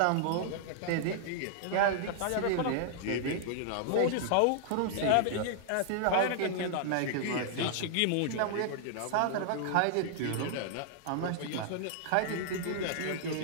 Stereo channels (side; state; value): both; different; correlation -0.01